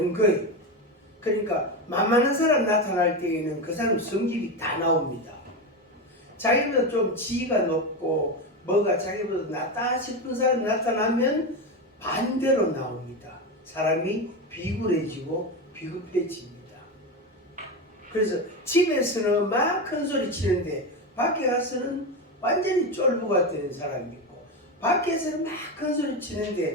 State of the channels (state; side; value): normal; both; correlation 0.16